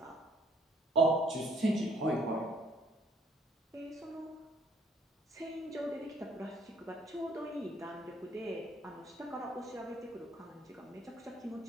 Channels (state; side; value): normal; both; correlation 0.63